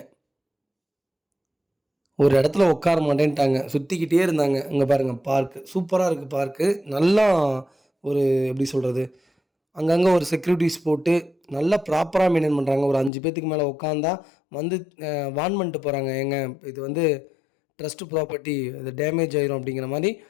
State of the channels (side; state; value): right; drops out; at 13.1 s